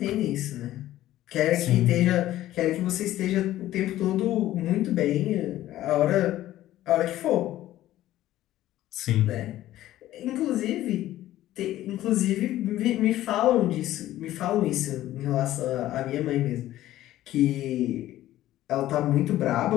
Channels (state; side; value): quieter; right; 14.2 dB